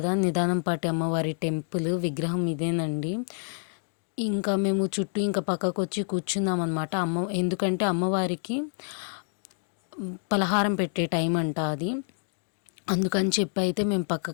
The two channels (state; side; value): silent; right; digital silence